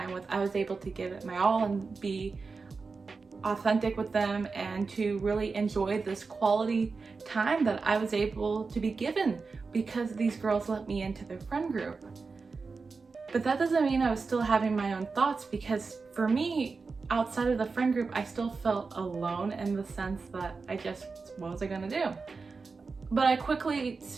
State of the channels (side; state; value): left; quieter; 4.5 dB